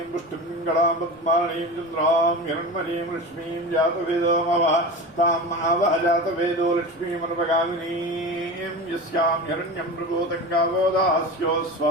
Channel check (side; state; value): right; noise; rumble, 29 dB below the sound